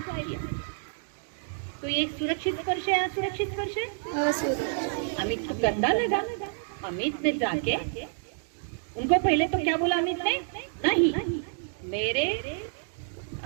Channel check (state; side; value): silent; left; digital silence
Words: किया। तो ये सुरक्षित स्पर्श है, असुरक्षित स्पर्श है? असुरक्षित। अमित को गंदा लगा। अमित ने जाके उनको पहले तो क्या बोला अमित ने, नहीं मेरे